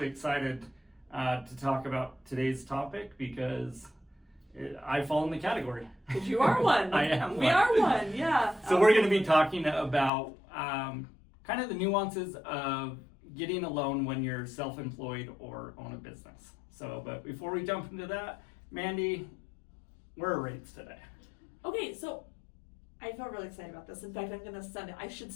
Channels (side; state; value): right; drops out; at 10.1 s